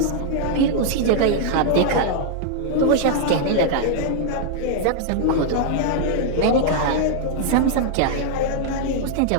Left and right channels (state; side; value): different; both; correlation -0.01